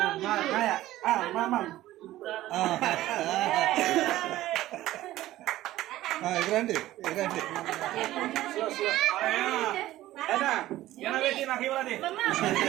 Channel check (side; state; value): left; quieter; 15.3 dB